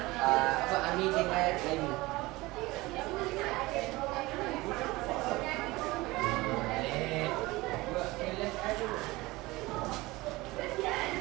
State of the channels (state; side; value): quieter; left; 20.9 dB